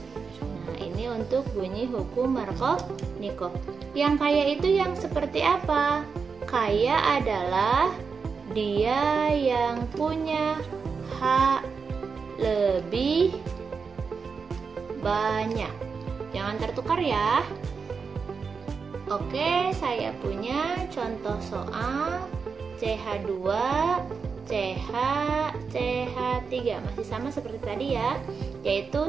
Nah, ini untuk bunyi hukum Markovnikov. Yang kaya itu yang seperti apa? Kaya adalah dia yang punya hak lebih banyak. Jangan tertukar ya. Oke, saya punya contoh soal CH2, CH, CH3. Masih sama seperti tadi ya,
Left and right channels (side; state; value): left; quieter; 5.3 dB